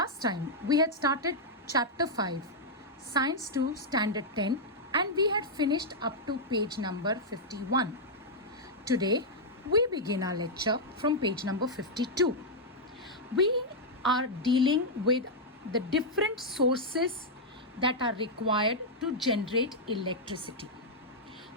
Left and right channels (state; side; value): normal; both; correlation -0.05